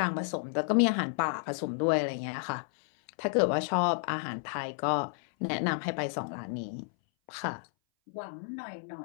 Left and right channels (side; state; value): right; silent; 57 dB below the other